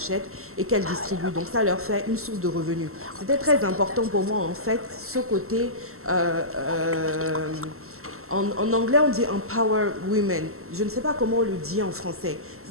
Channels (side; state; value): left; late; 0.63 ms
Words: et qu'elles distribuent. Donc ça leur fait une source de revenus. C'était très important pour moi en fait, ce côté, en anglais on dit empower women. Je ne sais pas comment on le dit en français.